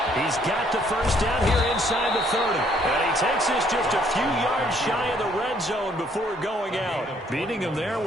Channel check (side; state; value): both; normal; correlation 0.65